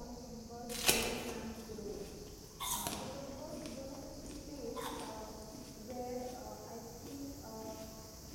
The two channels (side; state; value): both; identical; correlation 1.00